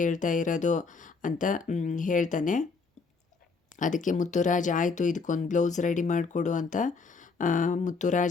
ಇರೋದು ಅಂತ ಹೇಳ್ತಾನೆ. ಅದಕ್ಕೆ ಮುತ್ತುರಾಜ್, ಆಯಿತು ಇದಕ್ಕೊಂದು ಬ್ಲೌಸ್ ರೆಡಿ ಮಾಡಿಕೊಡು ಅಂತ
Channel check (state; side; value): quieter; right; 4.6 dB